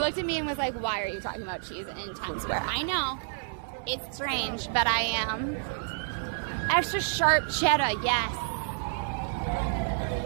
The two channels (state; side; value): silent; left; 58 dB below the other